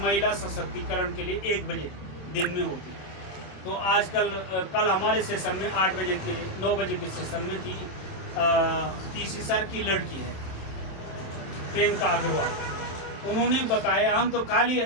महिला सशक्तिकरण के लिए 1 बजे दिन में होती है। तो आजकल कल हमारे सेशन में 8 बजे थी, 9 बजे के सेशन में थी, तीसरी सर की लड़की है प्रियंका अग्रवाल। उन्होंने बताया, हम तो खाली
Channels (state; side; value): late; right; 27 ms